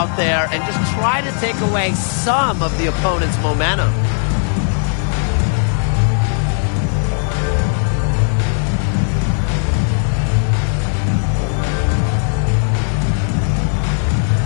there and just try to take away some of the opponent's momentum.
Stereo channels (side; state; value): right; silent; 62 dB below the other